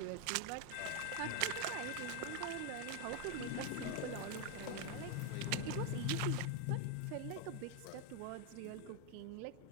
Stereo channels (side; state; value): both; different; correlation 0.01